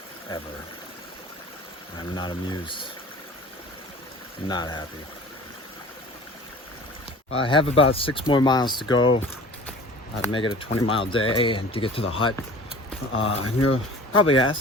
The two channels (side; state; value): both; normal; correlation 0.43